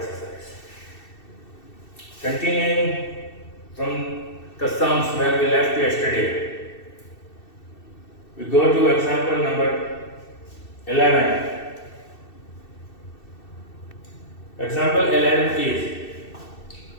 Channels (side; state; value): right; late; 2.7 ms